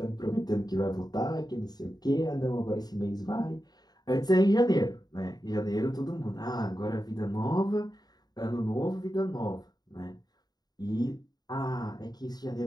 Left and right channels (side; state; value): right; late; 0.19 ms